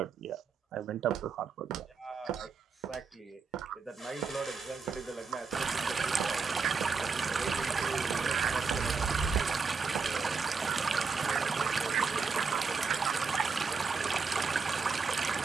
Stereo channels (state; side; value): quieter; left; 5.1 dB